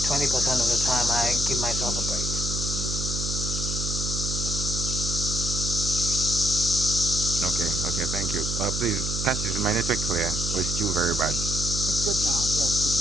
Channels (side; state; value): right; noise; hum, 3 dB below the sound